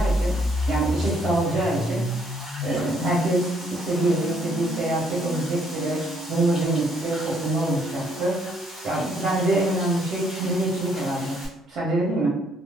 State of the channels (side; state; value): both; normal; correlation 0.68